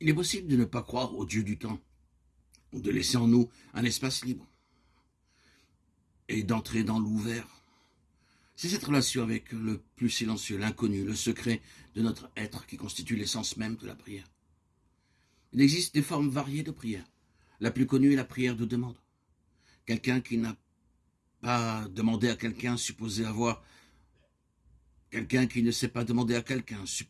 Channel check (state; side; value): identical; both; correlation 1.00